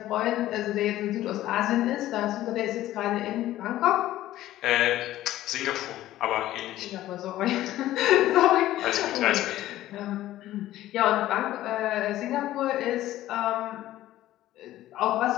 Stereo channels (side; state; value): right; quieter; 14.5 dB